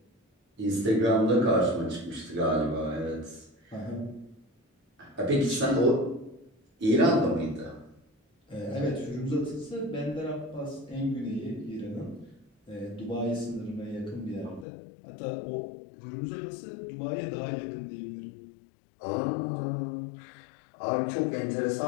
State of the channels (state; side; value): drops out; right; at 14.7 s